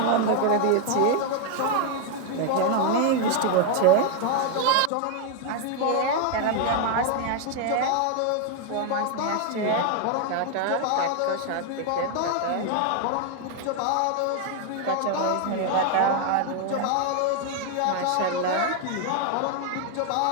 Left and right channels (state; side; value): different; both; correlation 0.01